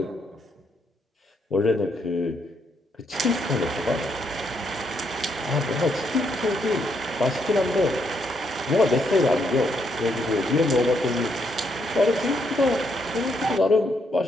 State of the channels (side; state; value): both; normal; correlation 0.75